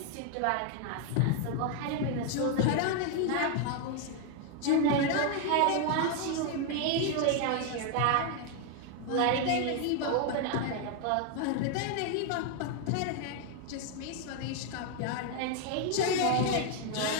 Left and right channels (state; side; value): different; both; correlation 0.01